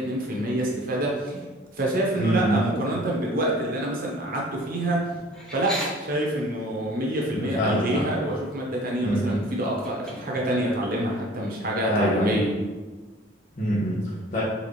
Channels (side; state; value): both; normal; correlation 0.48